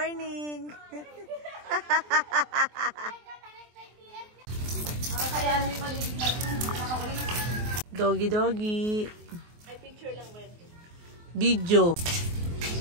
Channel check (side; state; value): left; late; 24 ms